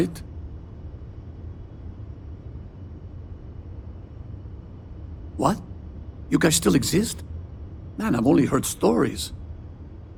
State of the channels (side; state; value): both; identical; correlation 1.00